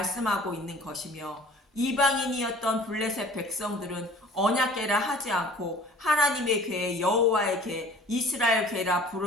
있는 것이며, 이방인이었던 블레셋 백성들은 언약궤라 하지 않고 하나님의 궤, 여호와의 궤, 이스라엘 궤라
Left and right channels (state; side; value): normal; both; correlation 0.48